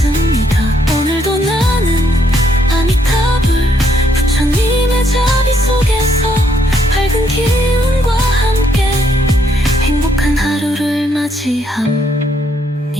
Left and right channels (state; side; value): normal; both; correlation 0.72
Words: 오늘도 나는 아미타불 부처님의 자비 속에서 밝은 기운과 함께 행복한 하루를 맞이합니다.